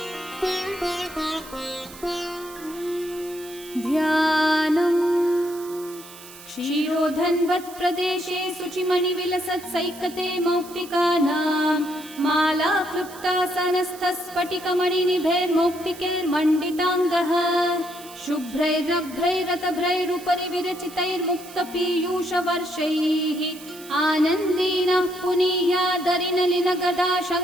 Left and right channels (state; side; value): noise; right; hiss, 18 dB below the sound